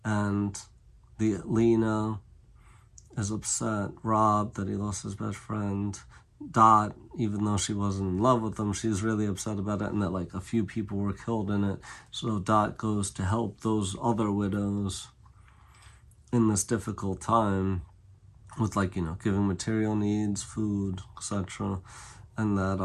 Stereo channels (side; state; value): both; identical; correlation 1.00